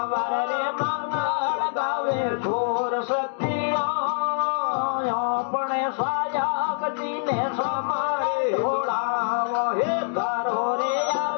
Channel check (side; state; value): right; silent; digital silence